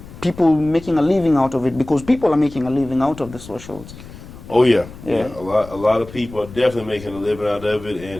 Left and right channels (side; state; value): left; noise; rumble, 16 dB below the sound